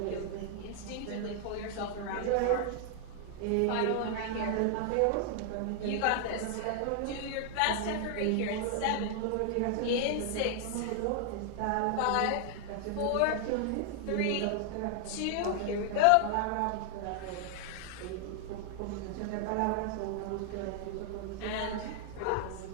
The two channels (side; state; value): both; different; correlation 0.00